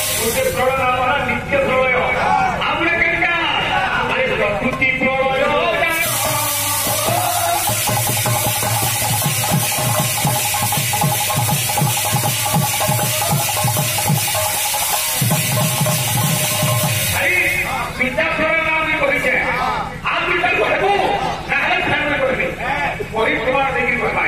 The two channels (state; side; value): identical; both; correlation 1.00